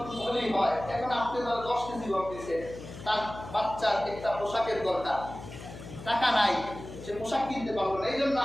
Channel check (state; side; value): noise; left; hum, 13 dB below the sound